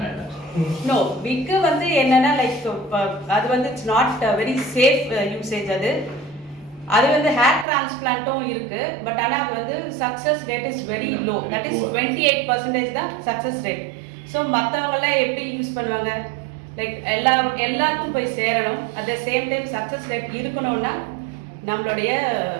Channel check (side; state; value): left; drops out; at 7.7 s